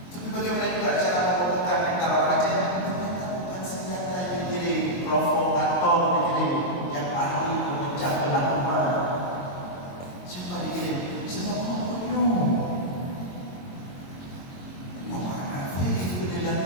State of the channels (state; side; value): late; right; 22 ms